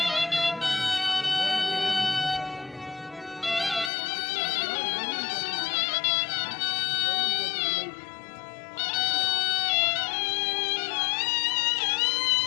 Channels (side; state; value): right; drops out; at 3.9 s